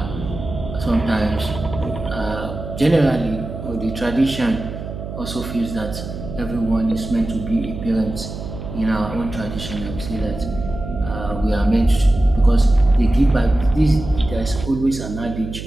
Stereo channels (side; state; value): right; noise; hum, 9 dB below the sound